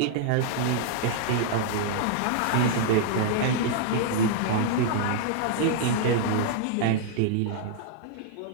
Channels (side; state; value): both; different; correlation -0.01